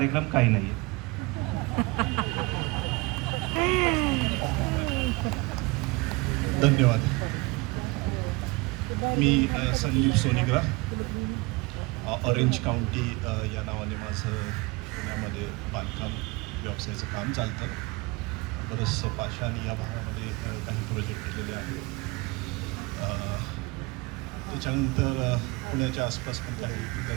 काही नाही आहे. धन्यवाद. मी संदीप सोनिग्रा, ऑरेंज काउंटी या नावाने माझं पुण्यामध्ये बांधकाम व्यवसायाचं काम चालतं. बरंचसं पाषाणी या भागामध्ये काही प्रोजेक्ट केलेले आहेत. त्याच्यानंतर पुण्याच्या आसपास पण काही इतर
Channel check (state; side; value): quieter; left; 24.7 dB